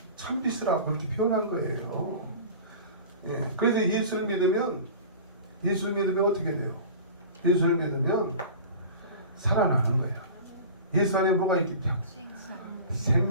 참빛이라고 그렇게 표현한 거예요. 그래서 예수를 믿으면 어떻게 돼요? 예수를 믿으면 살아나는 거예요. 예수 안에 뭐가 있기 때문에?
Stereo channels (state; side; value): inverted; both; correlation -0.37